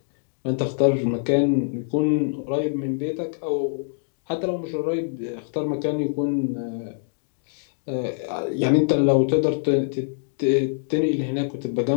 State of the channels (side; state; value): right; silent; digital silence